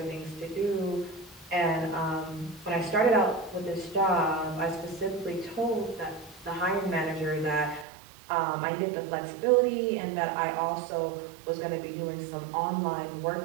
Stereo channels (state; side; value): drops out; left; at 7.9 s